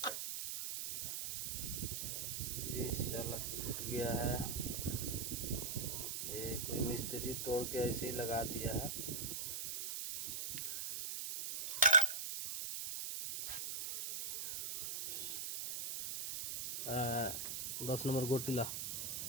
ये शाला टूट गया है, ये कोई मिस्त्री तोड़ के ऐसे ही लगा दिया है। आ, 10 नंबर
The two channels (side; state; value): right; noise; hiss, 3 dB below the sound